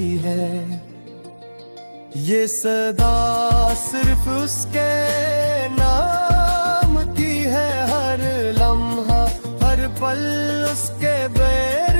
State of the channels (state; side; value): inverted; both; correlation -1.00